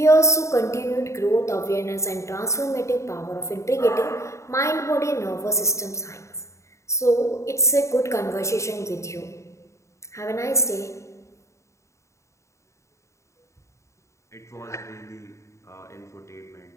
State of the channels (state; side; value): late; right; 0.14 ms